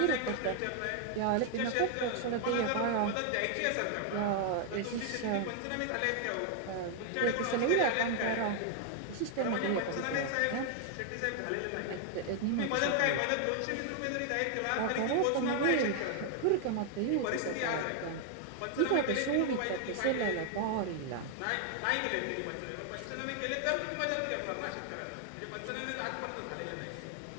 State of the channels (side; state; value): both; different; correlation 0.00